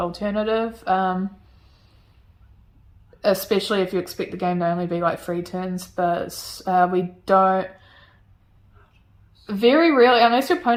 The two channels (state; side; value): identical; both; correlation 1.00